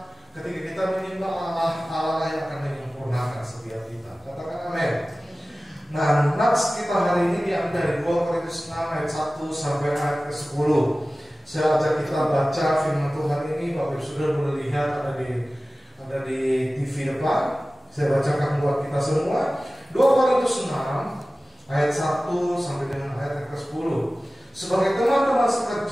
ketika kita menyembah Allah, Allah yang akan menyempurnakan setiap kita. Katakan amin. Nah, nats kita hari ini diambil dari 2 Korintus 6 ayat 1 sampai ayat ke-10. Saya ajak kita baca firman Tuhan ini. Bapak Ibu sudah boleh lihat ada di TV depan. Saya bacakan buat kita semua. 2 Korintus 6 ayat 1 sampai dengan ayat ke-10. Sebagai teman-teman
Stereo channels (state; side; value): normal; both; correlation 0.97